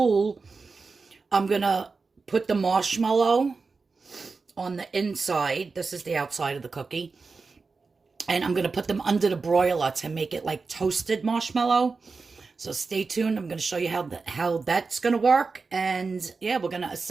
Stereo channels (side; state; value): left; quieter; 4.4 dB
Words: I'm going to put the marshmallow on the inside. This is the outside of the cookie. And I'm going to put them under the broiler to make it like toasted marshmallow. So stay tuned. I'm going to show you how that's going to work. And yeah, we're going to